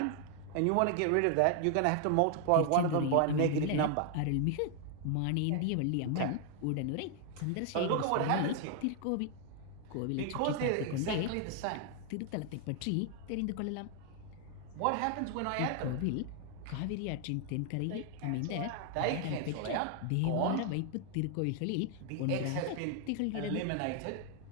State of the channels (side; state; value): both; different; correlation 0.00